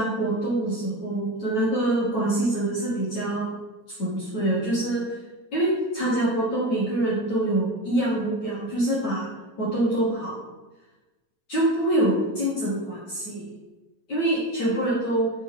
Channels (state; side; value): late; right; 9.1 ms